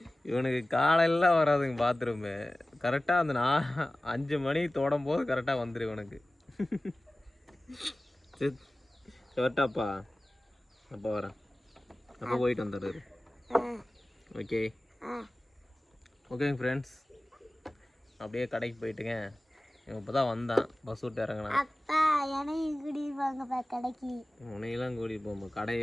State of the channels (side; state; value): both; normal; correlation 0.97